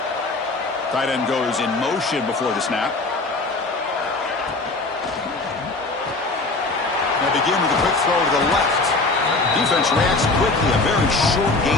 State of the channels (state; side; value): quieter; right; 3.4 dB